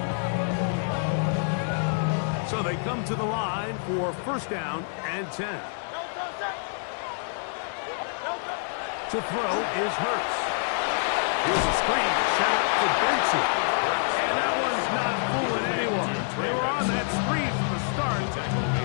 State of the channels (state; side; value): silent; right; digital silence